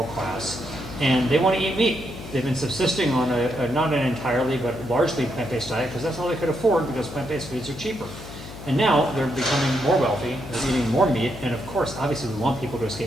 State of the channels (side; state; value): left; noise; hum, 13 dB below the sound